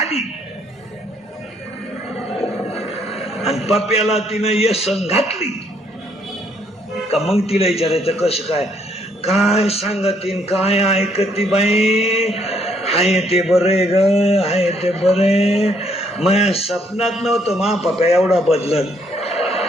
आणि पप्याला तिनं येसन घातली का मग तिला विचारायचं कसं काय सांगतीन, काय ऐकती बाई. हाय ते बरे ग, हाय ते बरे. माझ्या स्वप्नात नव्हतं मा पप्या एवढा बदलत,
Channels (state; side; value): normal; both; correlation 0.69